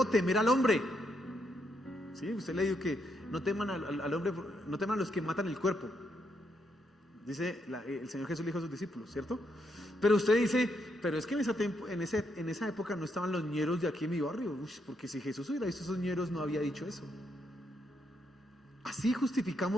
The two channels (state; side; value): normal; both; correlation 0.78